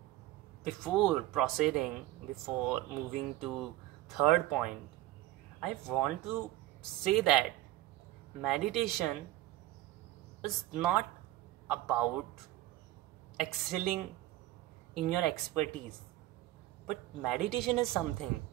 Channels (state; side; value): quieter; left; 15.8 dB